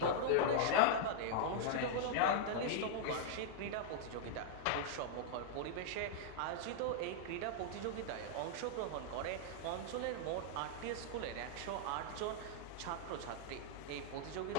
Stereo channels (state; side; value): different; both; correlation -0.01